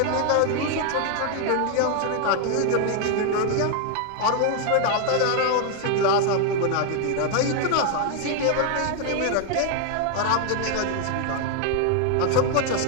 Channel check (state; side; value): different; both; correlation 0.00